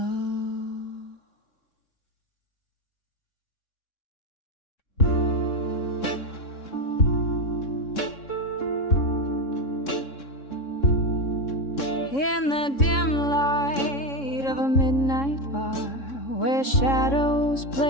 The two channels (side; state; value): right; late; 3.6 ms